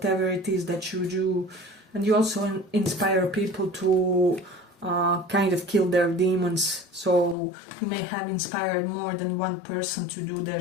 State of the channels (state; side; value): drops out; right; at 7.4 s